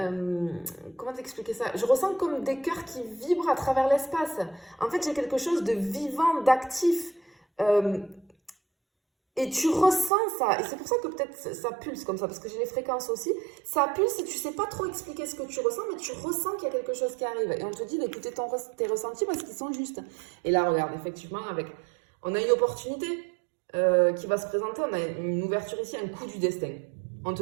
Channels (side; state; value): left; drops out; at 10.1 s